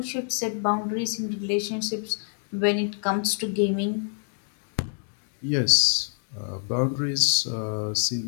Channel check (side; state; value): right; silent; 58 dB below the other